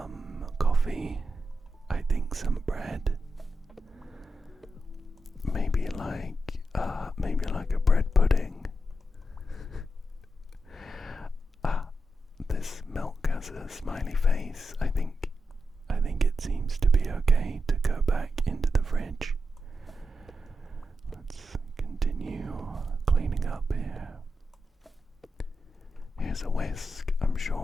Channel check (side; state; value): both; normal; correlation 0.87